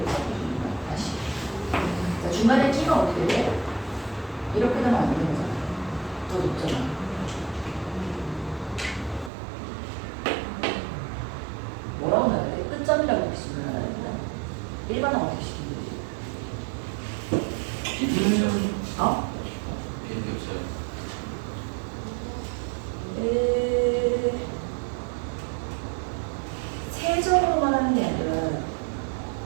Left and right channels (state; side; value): drops out; left; at 9.3 s